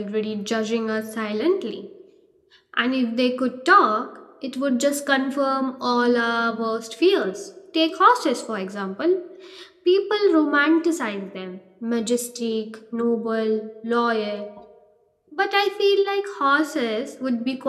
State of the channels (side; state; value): both; identical; correlation 1.00